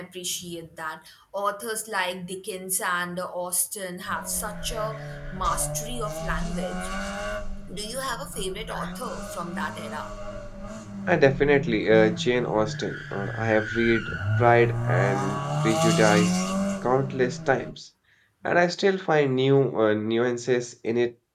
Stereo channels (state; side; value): identical; both; correlation 1.00